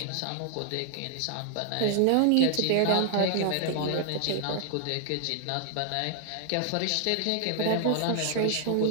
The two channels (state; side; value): different; both; correlation -0.01